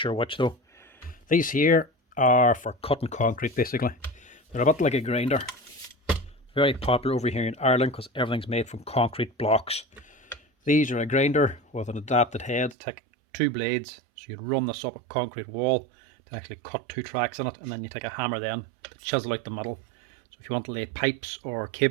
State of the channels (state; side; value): drops out; left; at 12.8 s